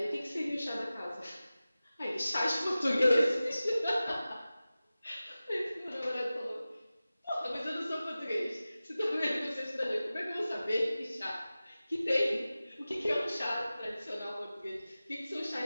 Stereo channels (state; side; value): inverted; both; correlation -0.96